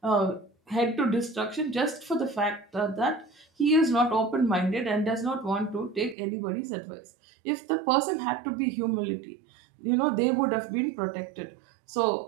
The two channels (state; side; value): drops out; left; at 6.2 s